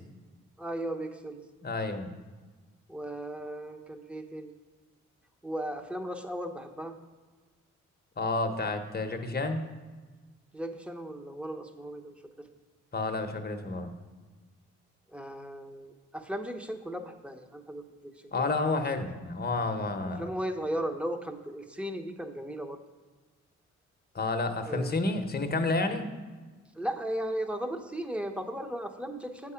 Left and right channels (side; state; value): both; normal; correlation 0.43